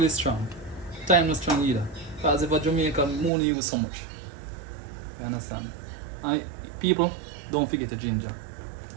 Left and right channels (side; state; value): left; drops out; at 3.3 s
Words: strong. Thyme not strong either. Because if a Jamaican, we only use so much. You understand? And people, don't forget the ginger.